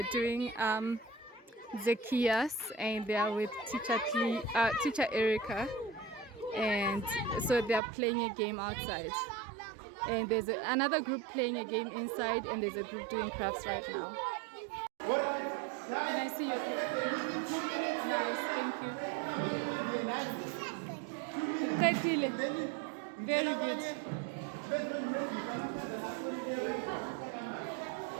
doing Zacchaeus, and they are with teacher Erica, and so they are playing a game outside. And there's another group playing a game inside, and there's a group doing crafts right now. Can I see your picture? Nice, thank you. Very good.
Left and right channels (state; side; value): drops out; left; at 7.8 s